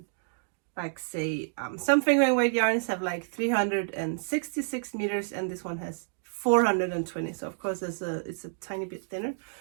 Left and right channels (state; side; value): silent; left; digital silence